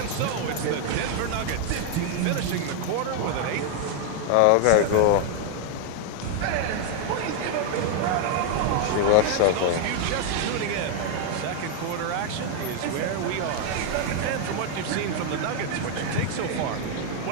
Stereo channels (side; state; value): both; different; correlation 0.00